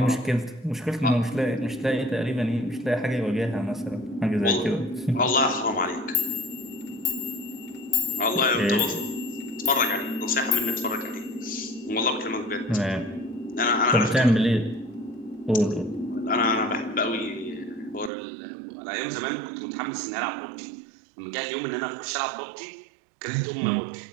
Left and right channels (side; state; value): left; drops out; at 18.1 s